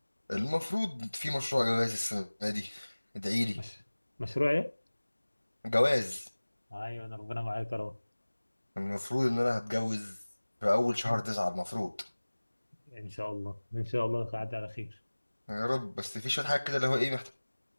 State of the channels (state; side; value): inverted; both; correlation -1.00